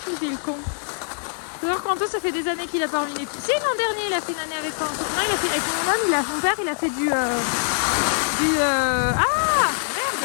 Il est le con. Faut voir qu'Anto, ça fait des années qu'il a pas remis les pieds. Si, l'an dernier, il a fait une année avec Anto. Non, il a fait avec mon homme, mon père, il a fait du... Ah merde,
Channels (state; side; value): silent; right; digital silence